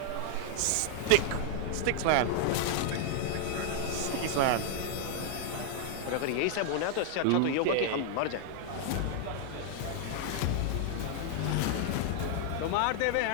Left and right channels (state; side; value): different; both; correlation 0.00